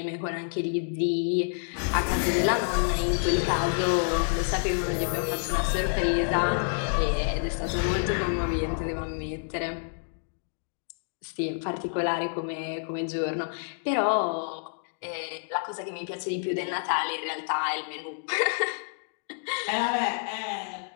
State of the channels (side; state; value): right; silent; digital silence